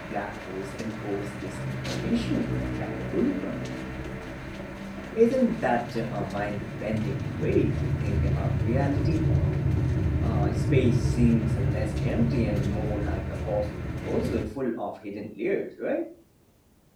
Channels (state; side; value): identical; both; correlation 1.00